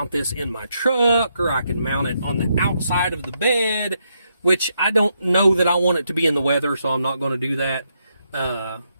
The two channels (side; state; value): both; inverted; correlation -0.79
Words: this in my truck, or I could mount it on the outside of the bed, which I don't know that I want it to be in the weather, so I'm not going to do that.